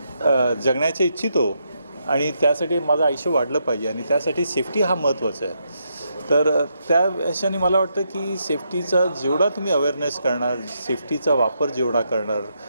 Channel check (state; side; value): inverted; both; correlation -0.80